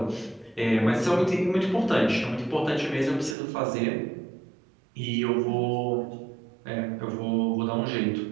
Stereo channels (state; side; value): drops out; left; at 3.4 s